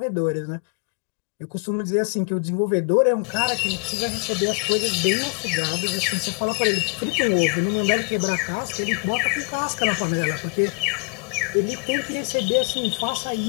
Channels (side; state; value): right; quieter; 36.8 dB